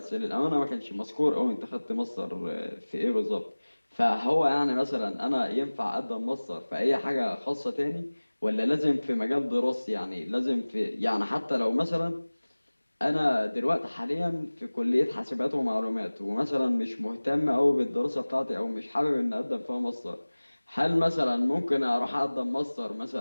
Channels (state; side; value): inverted; both; correlation -1.00